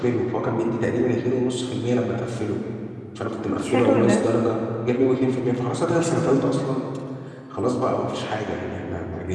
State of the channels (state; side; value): identical; both; correlation 1.00